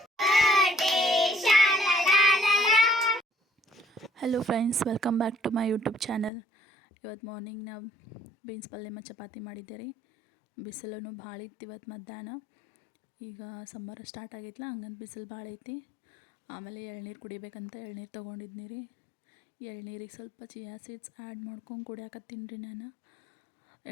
Hello friends, welcome back to my YouTube channel. ಇವತ್ತು ಮಾರ್ನಿಂಗ್ ನಾವು ಬೀನ್ಸ್ ಪಲ್ಯ ಮತ್ತು ಚಪಾತಿ ಮಾಡಿದ್ದೆ ರೀ. ಬಿಸಿಲೂ ಭಾಳ ಇತ್ತು ಇವತ್ತು ಮಧ್ಯಾಹ್ನ. ಈಗ ಸಮ್ಮರ್ ಸ್ಟಾರ್ಟ್ ಆಗೈತಲ್ಲ, ಹಂಗಂತ ಬಿಸಿಲು ಭಾಳ ಐತಿ. ಆಮೇಲೆ ಎಳ್ನೀರು ಕುಡಿಬೇಕಂತ ಎಳ್ನೀರು ತೊಗೊಂಡಿದ್ನಿ ರೀ. ಎಳ್ನೀರಿಗೆ ಸ್ವಲ್ಪ ಚಿಯಾ ಸೀಡ್ಸ್ ಆ್ಯಡ್ ಮಾಡ್ಕೊಂಡು ಕುಡಿಯಾಕತ್ತೀನಿ ರೀ ನಾನು.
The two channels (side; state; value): right; drops out; at 6.3 s